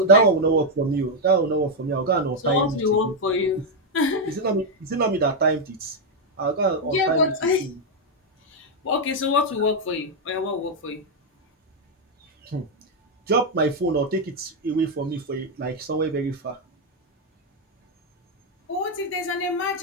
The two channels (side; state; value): both; normal; correlation 0.01